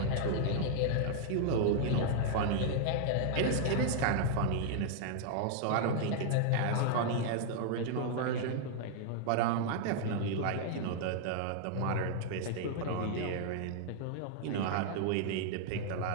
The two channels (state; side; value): different; both; correlation -0.01